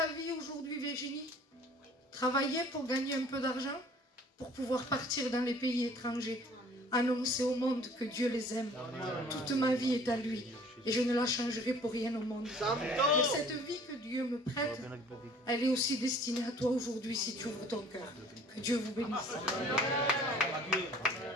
vie aujourd'hui, Virginie? Travailler pour gagner un peu d'argent, pour pouvoir partir dans les pays étrangers, annoncer au monde que Dieu les aime. Toute ma vie est à lui et je ne la changerai pour rien au monde. Et cette vie que Dieu me prête, elle est aussi destinée à toi aujourd'hui si tu ouvres ton cœur. Que Dieu vous bénisse.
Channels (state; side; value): normal; both; correlation 0.52